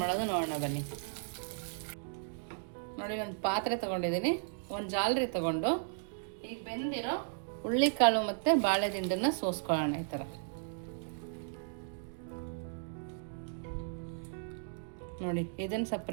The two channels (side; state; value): left; silent; digital silence